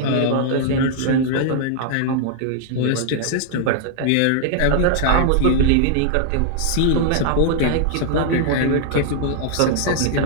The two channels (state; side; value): different; both; correlation -0.01